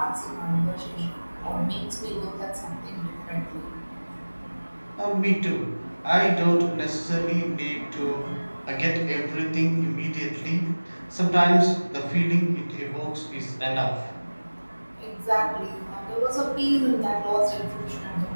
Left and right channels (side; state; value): both; inverted; correlation -1.00